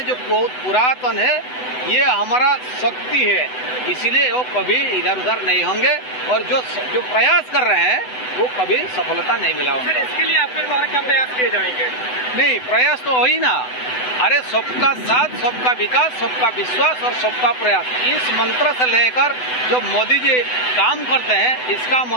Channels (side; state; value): right; late; 8.0 ms